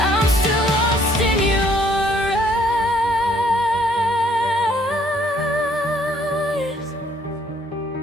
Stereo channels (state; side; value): normal; both; correlation 0.64